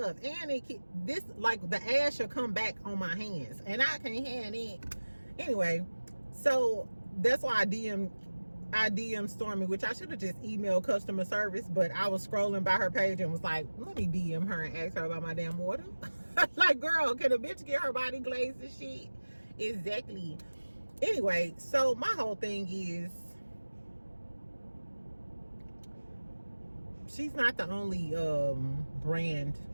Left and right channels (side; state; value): both; inverted; correlation -1.00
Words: And this, like, the ash will come back on my hands and I can't have it. Anyway, so that's why I DM Stormi, which I should have just emailed customer service, but I was scrolling by her page and was like, let me DM her and ask her about my damn water. Like, girl, can a bitch get her body glazed and shit? Exactly. Anyway, so my whole thing is, she's not the only